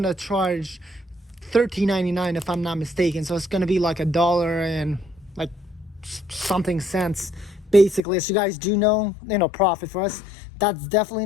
charge $13.99 if I'm not mistaken. So it's gonna be like $1 and like something cents, basically. As you guys do know, profit for us. That's definitely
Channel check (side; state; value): right; drops out; at 8.0 s